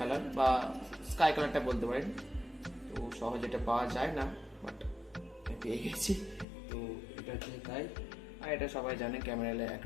বা স্কাই কালারটা বলতে পারেন। তো সহজে এটা পাওয়া যায় না, বাট পেয়ে গেছি। তো এটা হচ্ছে তাই। আর এটা সবাই জানে ক্যামেরালে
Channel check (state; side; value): drops out; right; at 6.5 s